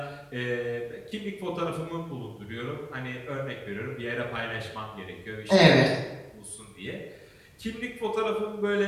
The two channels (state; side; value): identical; both; correlation 1.00